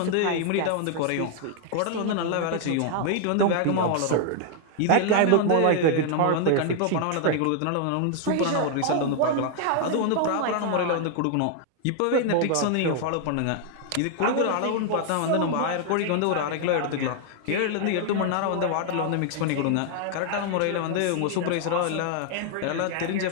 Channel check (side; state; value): both; different; correlation 0.00